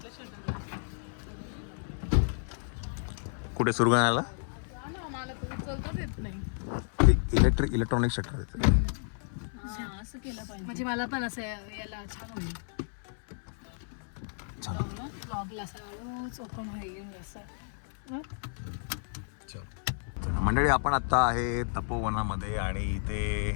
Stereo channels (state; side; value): silent; right; 57 dB below the other